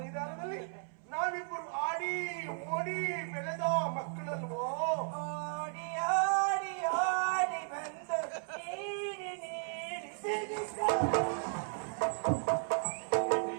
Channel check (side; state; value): left; silent; 54 dB below the other